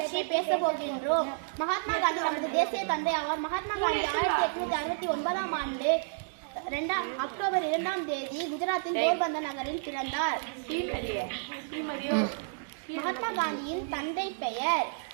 பேச போகின்றோம். மகாத்மா காந்தி நமது தேசிய தந்தை ஆவார். மகாத்மா காந்தி 1869ஆம் ஆண்டு அக்டோபர் 2ஆம் தேதி குஜராத்தின் போர்பந்தர் நகரில் பிறந்தார். மகாத்மா காந்தியின் தந்தை பெயர்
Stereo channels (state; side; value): silent; left; digital silence